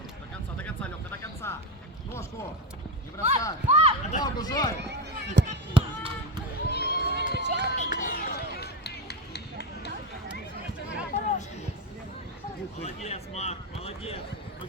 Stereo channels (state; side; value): normal; both; correlation 0.15